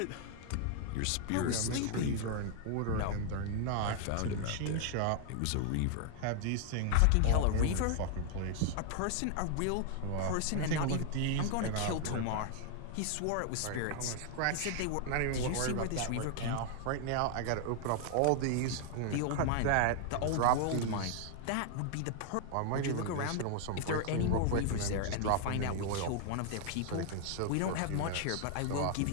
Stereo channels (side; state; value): both; different; correlation 0.00